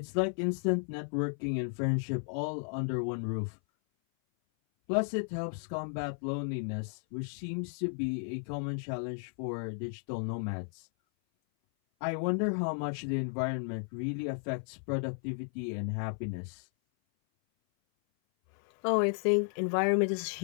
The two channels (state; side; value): silent; right; 55 dB below the other